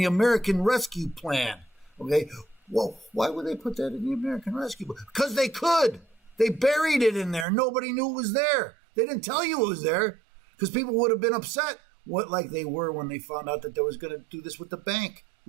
American Rescue Plan. Okay. Well, why would they put that in the American Rescue Plan? Because they could. They buried it in there. Nobody knew it was there. They didn't tell you it was there because people would have been upset, like they were when they found out that they was going to do this with the bank,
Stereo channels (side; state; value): left; drops out; at 7.5 s